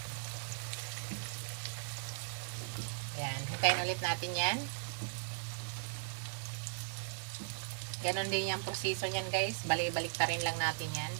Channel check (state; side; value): silent; left; digital silence